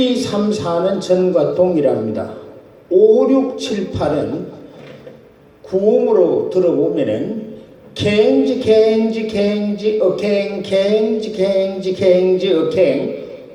3, 4는 전과 동일합니다. 5, 6, 7, 8은 구음으로 들어보면은 갱지 갱지 갱지 어갱 갱지 갱지 갱지 어갱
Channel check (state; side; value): identical; both; correlation 1.00